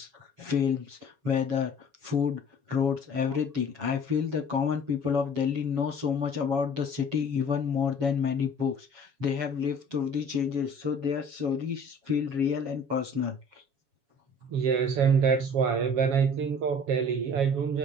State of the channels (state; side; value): late; left; 7.2 ms